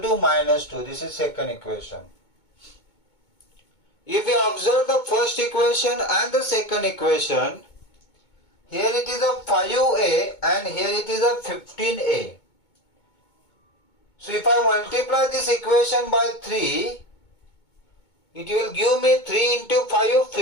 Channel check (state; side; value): late; right; 2.2 ms